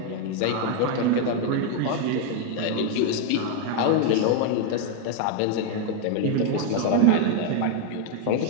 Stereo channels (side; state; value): both; different; correlation 0.00